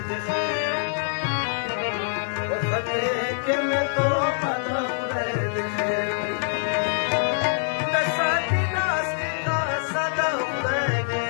دې خیر په خطرې کې مې توبه ده خدای دې خیر د ساتي لاس کې کاسه ده خدای دې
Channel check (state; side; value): silent; right; digital silence